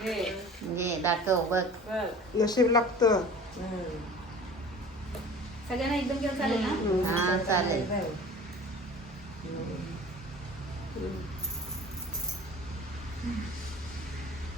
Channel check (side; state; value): both; normal; correlation 0.42